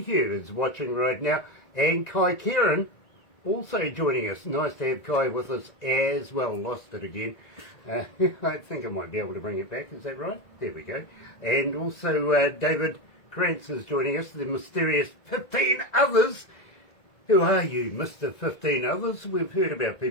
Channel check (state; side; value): late; right; 1.9 ms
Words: is watching right now. And Kai Kieran also joining us. Nice to have Kai with us as well. Lost it again. I think I might be able to bring it back. Is that right? There we go. And also David Krantz is joining us. The mysterious 15 others. Who are you, Mr. 15 Others? We've heard about